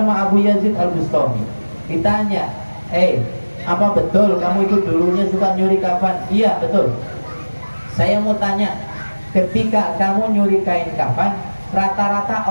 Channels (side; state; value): both; inverted; correlation -1.00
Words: Abu Yazid Al-Bustami. Ditanya, apa betul kamu itu dulunya suka nyuri kafan? Iya, betul. Saya mau tanya, ketika kamu nyuri kain kafan, rata-rata